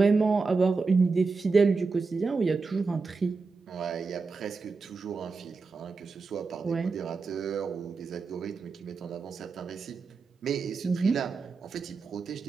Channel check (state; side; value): quieter; left; 4.4 dB